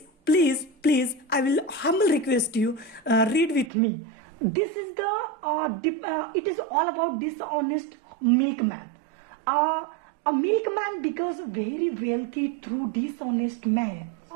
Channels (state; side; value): drops out; left; at 3.7 s